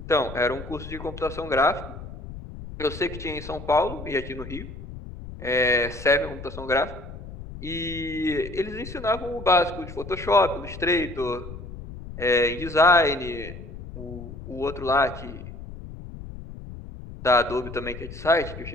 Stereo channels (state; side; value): noise; left; rumble, 12 dB below the sound